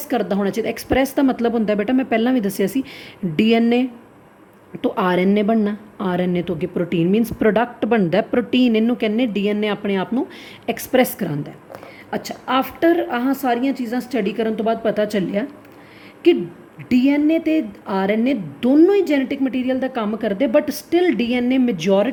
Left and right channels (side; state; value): both; identical; correlation 1.00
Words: ਕਰਦਾ ਹੋਣਾ ਚਾਹੀਦਾ। ਐਕਸਪ੍ਰੈਸ ਦਾ ਮਤਲਬ ਹੁੰਦਾ ਬੇਟਾ ਮੈਂ ਪਹਿਲਾਂ ਵੀ ਦੱਸਿਆ ਸੀ DNA ਤੋਂ RNA ਬਣਨਾ, RNA ਤੋਂ ਅੱਗੇ ਪ੍ਰੋਟੀਨ ਮੀਨਸ ਪ੍ਰੋਡਕਟ ਬਣਦਾ ਪ੍ਰੋਟੀਨ, ਇਹਨੂੰ ਕਹਿੰਦੇ DNA ਆਪਣੇ ਆਪ ਨੂੰ ਐਕਸਪ੍ਰੈਸ ਕਰਾਉਂਦਾ। ਅੱਛਾ, ਆਫਟਰ ਆਹ ਸਾਰੀਆਂ ਚੀਜ਼ਾਂ ਸਟੱਡੀ ਕਰਨ ਤੋਂ ਬਾਅਦ ਪਤਾ ਚੱਲਿਆ ਕਿ DNA ਅਤੇ RNA ਦੋਨੋਂ ਹੀ ਜੈਨੇਟਿਕ ਮਟੀਰੀਅਲ ਦਾ ਕੰਮ ਕਰਦੇ, but still DNA